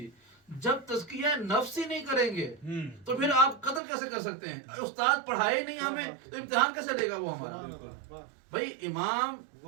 جب تزکیہ نفس ہی نہیں کریں گے تو پھر آپ قدر کیسے کر سکتے ہیں؟ استاد پڑھائے نہیں ہمیں تو امتحان کیسے لے گا وہ ہمارا؟ بھائی امام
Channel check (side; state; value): left; drops out; at 3.8 s